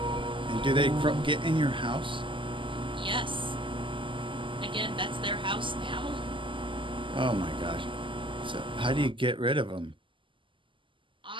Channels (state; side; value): late; left; 0.25 ms